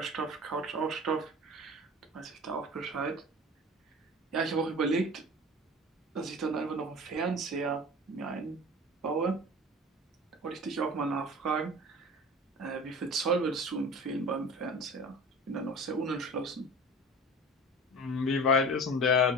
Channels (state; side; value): normal; both; correlation 0.37